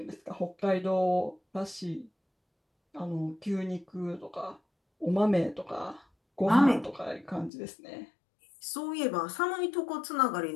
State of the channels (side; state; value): right; drops out; at 7.5 s